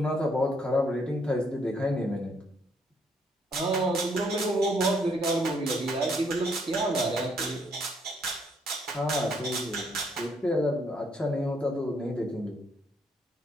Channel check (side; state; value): both; normal; correlation 0.70